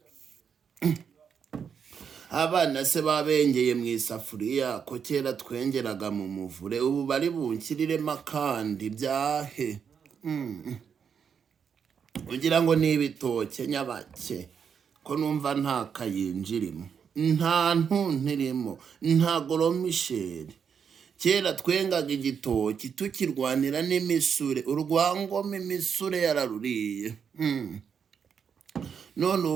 Abana se babengeye mu isafuriya ko kera twengeraga mu muvure ubu bari bunkiriremo akandi byahe. Ugira ngo ni ibitoke nyabake ko numva nta kayinjirimo nta ntuntirimo nta goromisheri. Kera twengaga igitoki tukirwanira n'imisure urwangoma imisure yararuriye. None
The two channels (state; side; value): quieter; left; 7.0 dB